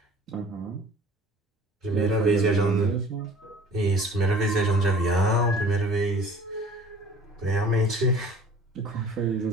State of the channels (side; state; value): both; normal; correlation 0.47